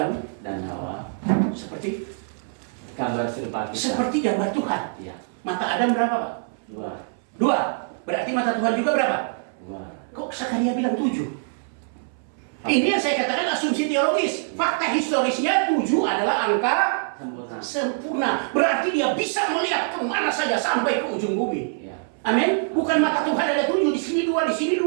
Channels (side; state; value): left; silent; 62 dB below the other